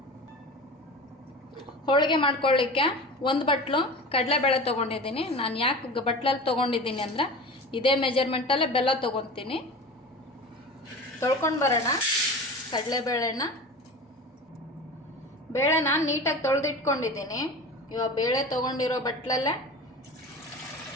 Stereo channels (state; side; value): normal; both; correlation 0.34